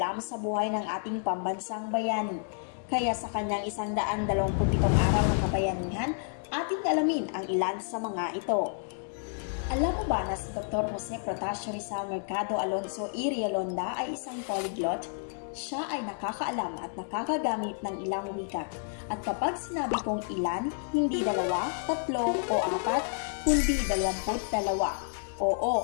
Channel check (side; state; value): right; silent; digital silence